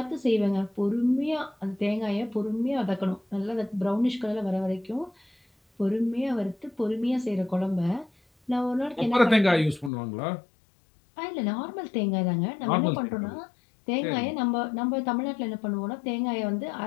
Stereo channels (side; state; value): right; drops out; at 9.9 s